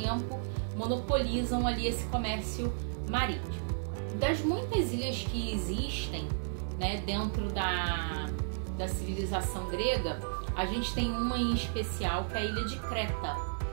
monopolizam ali esse comércio marítimo. Das muitas ilhas que existem, né, dentro da civilização grega, a gente tem uma em especial que é a ilha de Creta,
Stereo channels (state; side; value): silent; left; 56 dB below the other